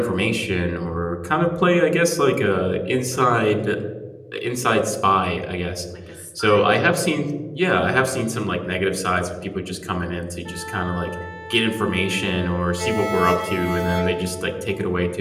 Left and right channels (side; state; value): both; identical; correlation 1.00